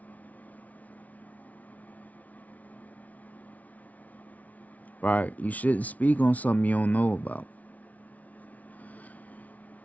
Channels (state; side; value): late; right; 0.071 ms